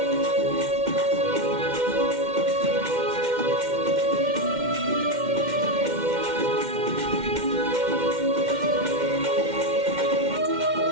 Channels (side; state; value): left; late; 2.1 ms